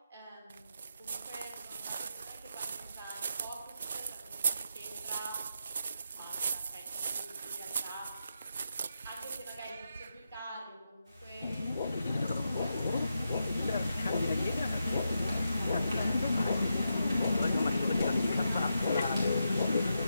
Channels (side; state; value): both; inverted; correlation -0.86